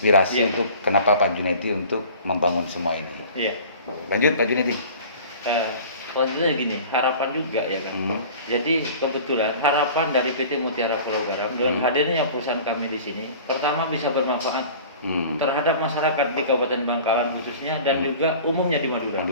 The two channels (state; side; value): inverted; both; correlation -0.42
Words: untuk kenapa Pak Junedi untuk membangun semua ini. Lanjut Pak Junedi. Selanjutnya gini, harapan juga ya kan. Jadi kebetulan harapan dari PT Mutiara Pulau Garam dengan hadirnya perusahaan kami di sini, pertama bisa bermanfaat terhadap masyarakat di Kabupaten Bangkalan khususnya dan juga umumnya di